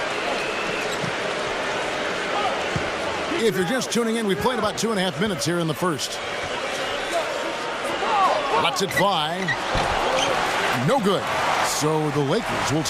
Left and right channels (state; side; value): identical; both; correlation 1.00